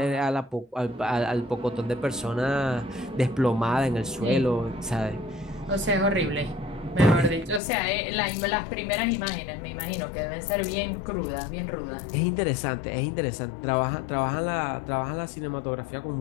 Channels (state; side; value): drops out; right; at 7.6 s